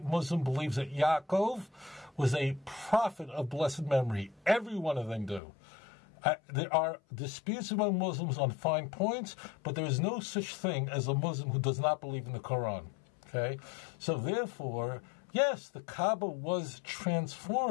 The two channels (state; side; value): drops out; right; at 5.4 s